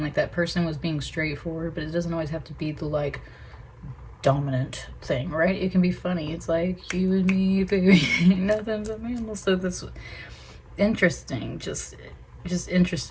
like that person was being straightforward, but it doesn't always have to be the like dominant thing, right? It can be funny. It's like, you and me, baby, nothing but mammals. So that's interesting, just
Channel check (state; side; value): identical; both; correlation 1.00